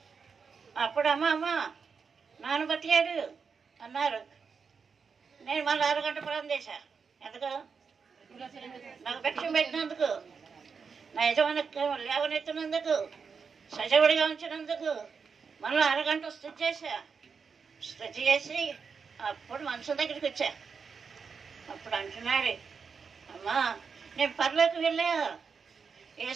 అప్పుడు అమ్మ నాన్న బతికాడు అన్నారు. నేను మళ్ళీ అరగంట ప్రాణం చేశా. ఎందుకు? నాకు భిక్షం పెట్టినందుకు, నా యజమాని లేవనెత్తినందుకు, సజీవుడిగా ఉంచినందుకు మళ్ళీ అరగంట స్థుతి చేశా. స్థుతి చేసి అప్పుడు మనుషుల దగ్గరికి వచ్చా. అప్పుడు అంటున్నాడు, అమ్మా నేను పరలోకి వెళ్ళా,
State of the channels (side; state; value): left; quieter; 5.7 dB